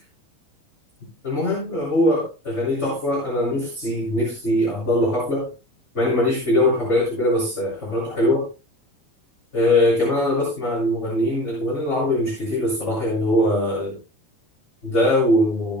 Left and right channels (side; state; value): both; normal; correlation 0.38